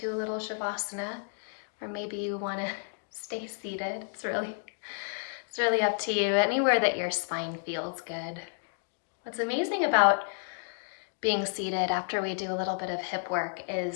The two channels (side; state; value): right; silent; digital silence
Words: a little Shavasana, or maybe you want to stay seated. It's really up to you. Anywhere that your spine feels good. What's amazing about being seated after we do a little bit of hip work